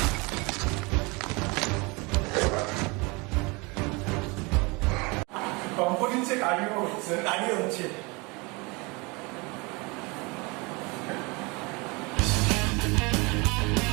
Component check cardio হচ্ছে। দাঁড়িয়ে হচ্ছে।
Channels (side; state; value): left; quieter; 27.3 dB